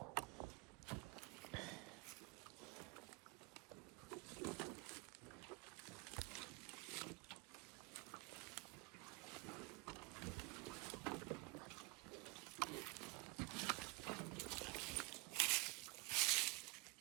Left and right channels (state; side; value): quieter; left; 25.1 dB